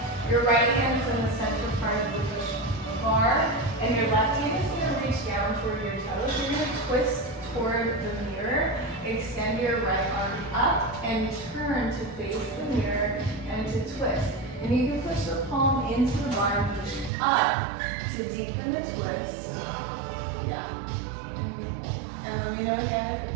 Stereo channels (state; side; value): drops out; left; at 17.1 s